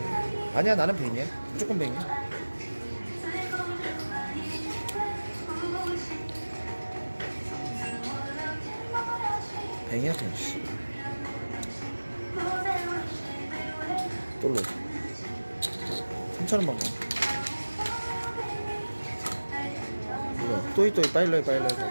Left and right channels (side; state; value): both; inverted; correlation -1.00